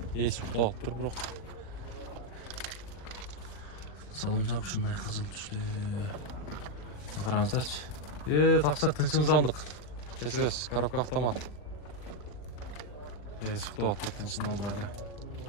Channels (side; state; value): right; late; 40 ms